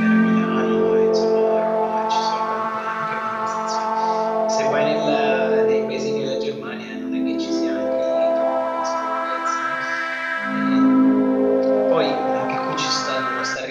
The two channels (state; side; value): identical; both; correlation 1.00